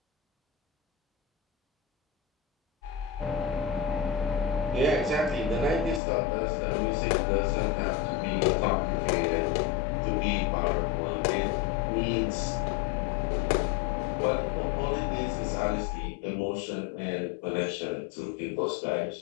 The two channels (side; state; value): right; drops out; at 6.0 s